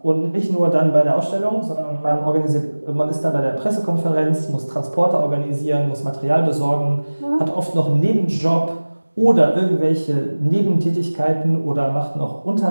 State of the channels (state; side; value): inverted; both; correlation -1.00